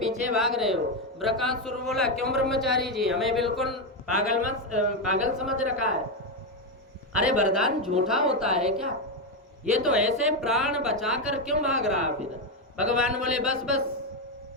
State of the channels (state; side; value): normal; both; correlation 0.07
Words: भाग रहे हो। ब्रकासुर बोला, क्यों ब्रह्मचारी जी, हमें बिल्कुल पागल समझ रखा है? अरे वरदान झूठा होता है क्या? ये तो ऐसे प्राण बचाकर क्यों भाग रहा फिर? भगवान बोले, बस